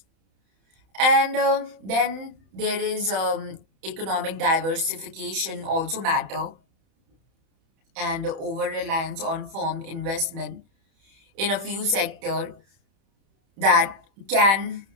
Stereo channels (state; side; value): late; left; 31 ms